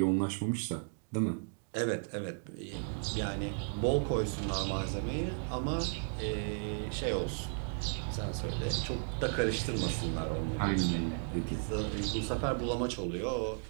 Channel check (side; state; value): left; silent; 55 dB below the other